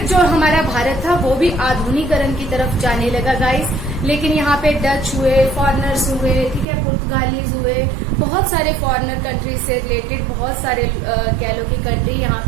जो हमारा भारत था वो भी आधुनिकरण की तरफ जाने लगा गाइस। लेकिन यहाँ पे डच हुए, फॉरेनर्स हुए, ठीक है, पुर्तगालीज हुए, बहुत सारे फॉरेनर कंट्री से रिलेटेड बहुत सारे कह लो कि कंट्री यहाँ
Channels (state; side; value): drops out; left; at 6.7 s